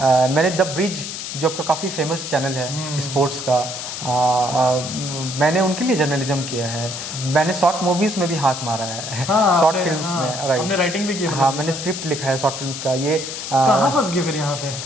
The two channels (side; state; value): left; noise; hiss, 7 dB below the sound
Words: द ब्रिज जो आपका काफ़ी फेमस चैनल है स्पोर्ट्स का, मैंने उनके लिए जर्नलिज्म किया है। मैंने शॉर्ट मूवीज़ में भी हाथ मारा है, शॉर्ट फिल्म्स में। राइट, आपने राइटिंग भी की? हाँ, मैंने स्क्रिप्ट लिखा है शॉर्ट फिल्म्स का। ये कहाँ फंस गए फिर यहाँ पे?